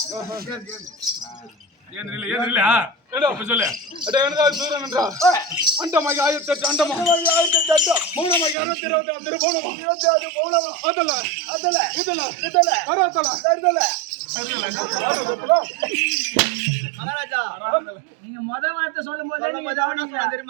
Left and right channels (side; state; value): left; drops out; at 8.6 s